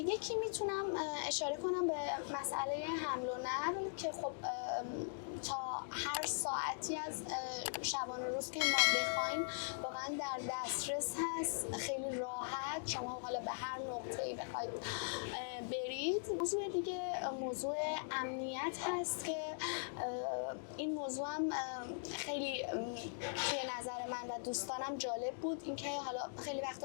میتونم اشاره کنم به مسئله حمل و نقل که خب تا هر ساعتی از شبانه روز که ما بخوایم واقعا در دسترس هست، خیلی راحت شما حالا به هر نقطه‌ای بخواید برید. موضوع دیگه موضوع امنیت هست که این موضوع هم خیلی توی نظر من و دوستانم جالب بود، اینکه حالا خیلی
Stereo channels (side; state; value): right; silent; digital silence